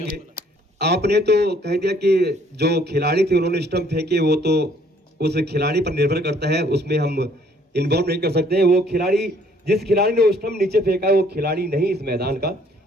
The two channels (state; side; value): normal; both; correlation 0.62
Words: आपने तो कह दिया कि जो खिलाड़ी थे उन्होंने स्टंप फेंके, वो तो उस खिलाड़ी पर निर्भर करता है, उसमें हम इन्वॉल्व नहीं कर सकते हैं। वो खिलाड़ी, जिस खिलाड़ी ने वो स्टंप नीचे फेंका है वो खिलाड़ी नहीं इस मैदान का,